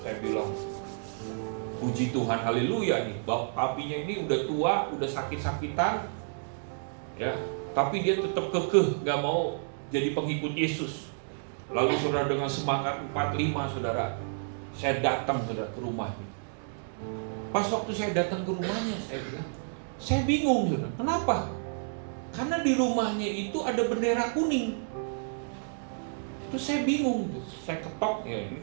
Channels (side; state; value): left; silent; digital silence